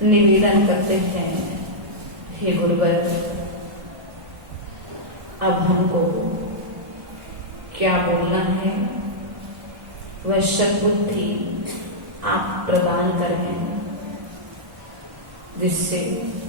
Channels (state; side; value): late; left; 1.2 ms